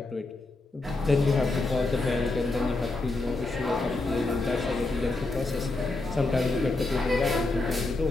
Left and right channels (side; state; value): right; quieter; 3.1 dB